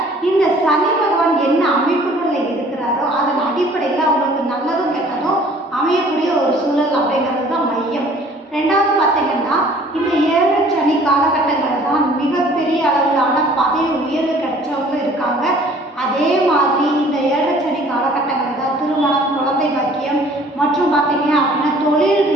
இந்த சனி பகவான் என்ன அமைப்புகளில் இருக்கிறாரோ அதன் அடிப்படையில் அவங்களுக்கு நல்லதும் கெட்டதும் அமையக்கூடிய ஒரு சூழல் அப்படிங்கிறது தான் மையம். ரெண்டாவது பார்த்தீங்கன்னா இந்த 7 சனி காலகட்டங்களில் தான் மிகப்பெரிய அளவிலான பதவி உயர்வு கிடைச்சவங்களும் இருக்காங்க. அதே மாதிரி இந்த 7 சனி காலகட்டங்களில் தான் திருமணம், குழந்தை பாக்கியம் மற்றும் பார்த்தீங்க அப்படின்னா தொழில்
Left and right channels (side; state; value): both; normal; correlation 0.53